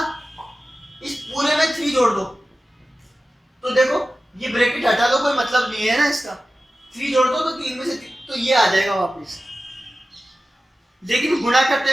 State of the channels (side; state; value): both; normal; correlation 0.95